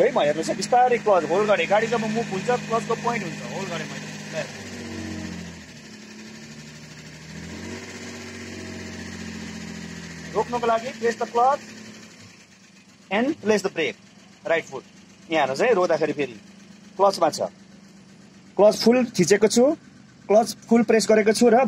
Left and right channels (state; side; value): identical; both; correlation 1.00